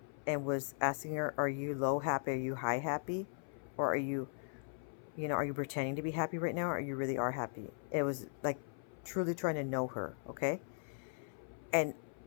and was asking her, are you low happy? Are you high happy? Or are you pretending to be happy right now? Or you really are happy? It was like truly trying to know her. Okay. And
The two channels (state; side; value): silent; right; 52 dB below the other